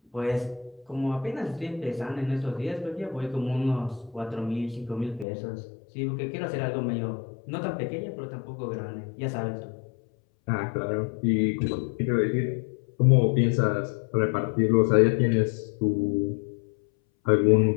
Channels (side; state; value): right; drops out; at 5.2 s